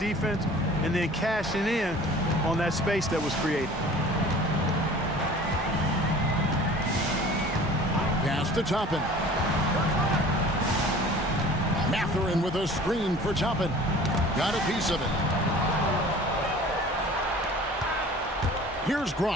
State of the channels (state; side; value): normal; both; correlation 0.45